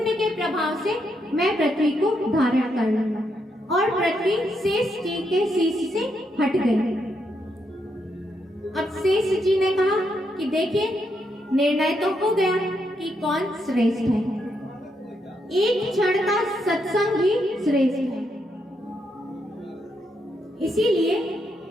के प्रभाव से मैं पृथ्वी को धारण कर लूंगा। और पृथ्वी शेष जी के शीश से हट गई। अब शेष जी ने कहा कि देखिए निर्णय तो हो गया कि कौन श्रेष्ठ है। एक क्षण का सत्संग ही श्रेष्ठ है। इसीलिए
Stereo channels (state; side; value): normal; both; correlation 0.79